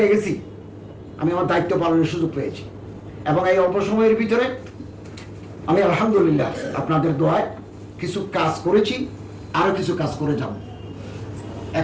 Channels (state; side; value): identical; both; correlation 1.00